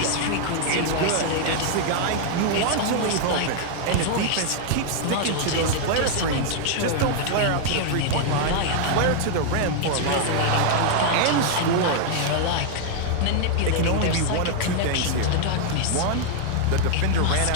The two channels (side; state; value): both; different; correlation 0.00